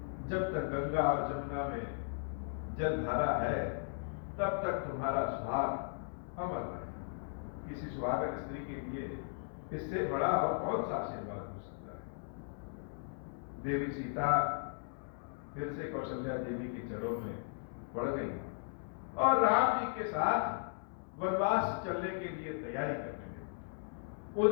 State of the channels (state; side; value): silent; right; 53 dB below the other